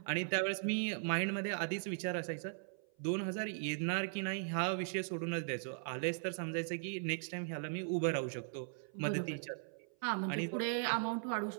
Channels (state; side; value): silent; left; 52 dB below the other